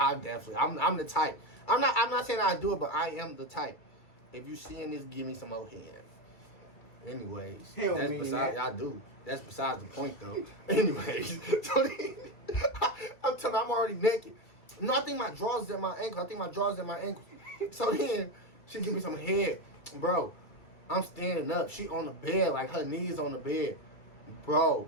the type. I'm not saying I do it, but I am the type. If you seeing this, give me some more head. Anyways, Hell that's man, besides. that. I do. That's besides the point, though. Anyways, so then, I'm telling you, I'm already naked. No, I think my drawers is at my ankle. So then she give me some head, bro. I'm standing up. She on the bed, like her knees on the bed, bro.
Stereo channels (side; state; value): right; late; 2.3 ms